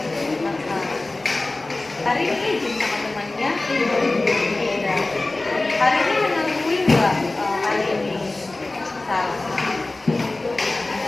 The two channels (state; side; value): quieter; right; 3.0 dB